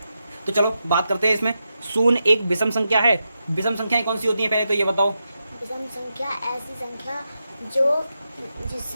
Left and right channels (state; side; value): inverted; both; correlation -0.87